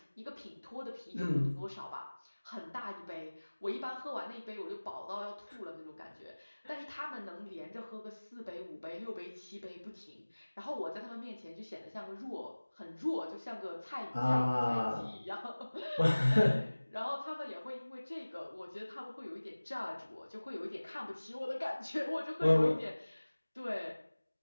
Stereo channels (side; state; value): both; inverted; correlation -1.00